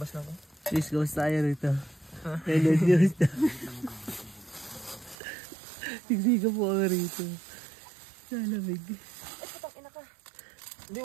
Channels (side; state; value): left; drops out; at 5.2 s